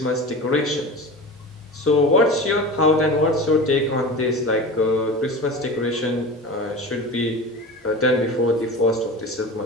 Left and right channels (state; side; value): normal; both; correlation 0.32